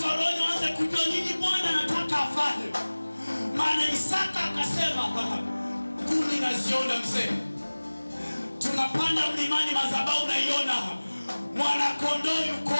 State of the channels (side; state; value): both; inverted; correlation -1.00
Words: waone waanze kujua nini Bwana anataka afanye. Maana Isaka akasema, kuni naziona mzee. Tunapanda mlimani, madhabahu naiona. Mwana kondoo yuko